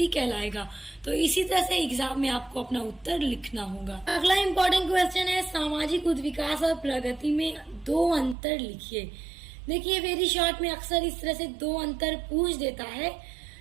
कहलाएगा। तो इसी तरह से एग्जाम में आपको अपना उत्तर लिखना होगा। अगला इम्पोर्टेंट क्वेश्चन है, सामाजिक उद्विकास और प्रगति में दो अंतर लिखिए। देखिए वेरी शॉर्ट में अक्सर इस तरह से दो अंतर पूछ देता है।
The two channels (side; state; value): left; drops out; at 8.3 s